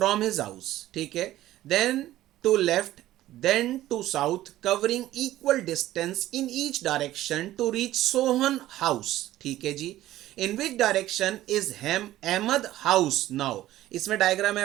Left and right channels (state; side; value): quieter; left; 14.6 dB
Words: हिज हाउस, ठीक है, then to left, then to south, covering equal distance in each direction to reach Sohan house, ठीक है जी। In which direction is Ahmad house now? इसमें डायग्राम